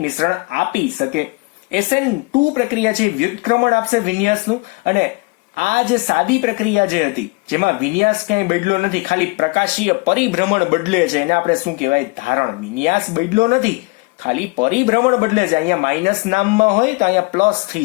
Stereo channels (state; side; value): quieter; right; 27.5 dB